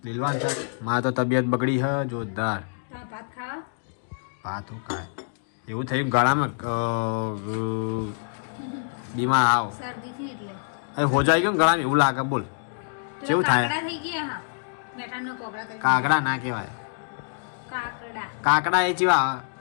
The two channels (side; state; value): right; silent; digital silence